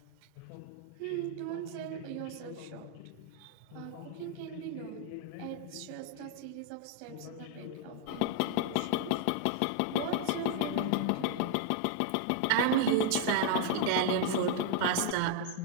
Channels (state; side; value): different; both; correlation 0.00